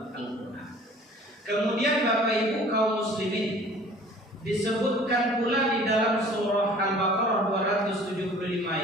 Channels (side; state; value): both; normal; correlation 0.49